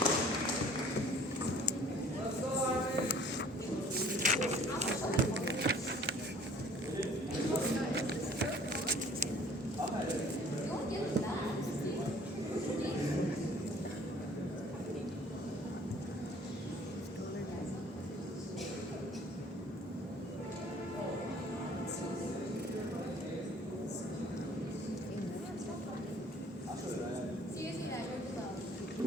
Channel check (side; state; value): both; normal; correlation 0.53